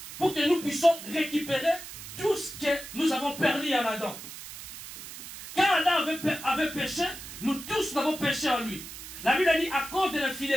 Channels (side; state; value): right; noise; hiss, 12 dB below the sound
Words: pour que nous puissions récupérer tout ce que nous avons perdu en Adam. Quand Adam avait péché, nous tous avons péché en lui. La Bible a dit, à cause de